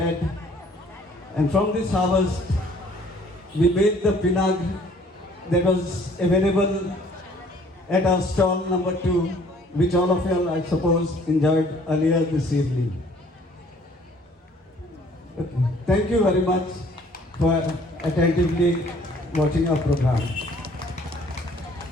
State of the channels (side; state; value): both; normal; correlation 0.57